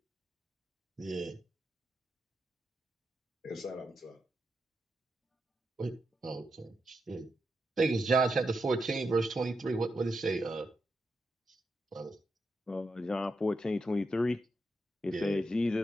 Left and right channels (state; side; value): normal; both; correlation 0.85